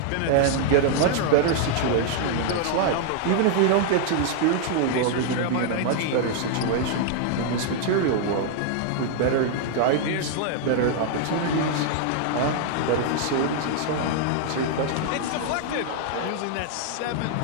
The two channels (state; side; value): different; both; correlation 0.00